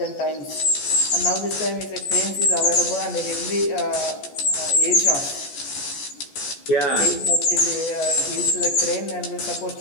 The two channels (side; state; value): right; late; 14 ms